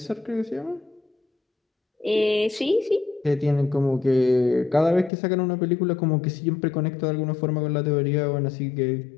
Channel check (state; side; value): drops out; right; at 5.1 s